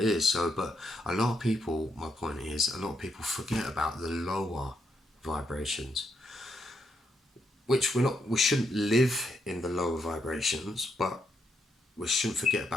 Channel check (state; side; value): normal; both; correlation 0.78